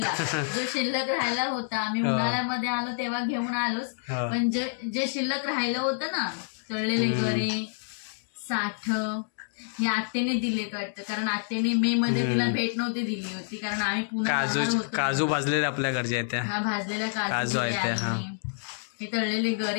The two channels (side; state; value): right; silent; digital silence